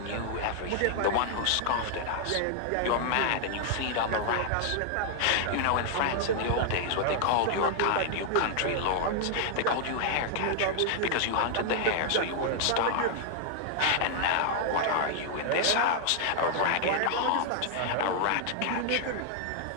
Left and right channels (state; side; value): different; both; correlation 0.00